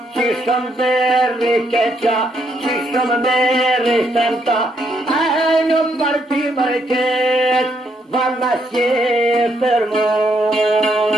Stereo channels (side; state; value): both; normal; correlation 0.74